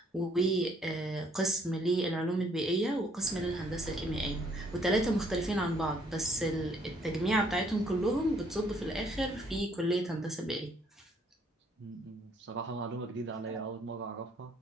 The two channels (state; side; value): normal; both; correlation 0.65